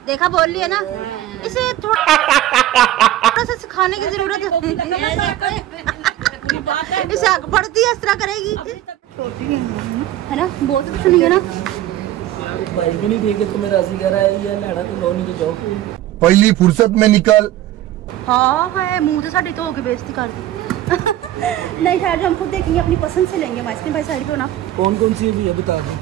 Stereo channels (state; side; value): quieter; left; 13.5 dB